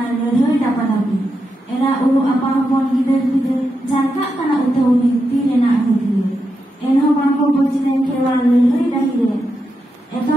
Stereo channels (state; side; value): normal; both; correlation 0.86